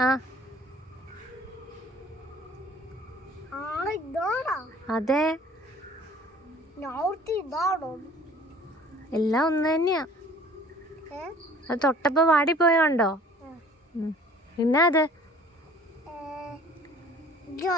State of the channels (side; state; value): both; normal; correlation 0.51